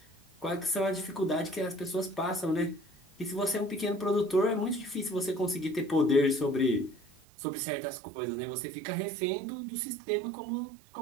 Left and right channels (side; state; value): left; drops out; at 7.2 s